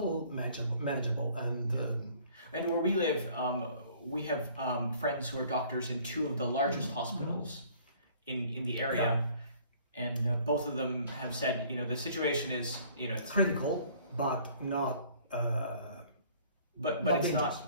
manageable. And where we live, we have friends who are doctors in two of the largest hospitals in the area, and both of them have said, the situation is, it's critical, but not. But it's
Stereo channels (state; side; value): inverted; both; correlation -0.55